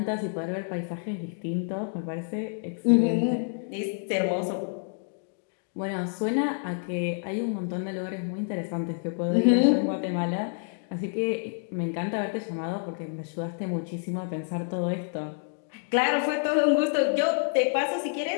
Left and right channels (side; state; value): right; silent; digital silence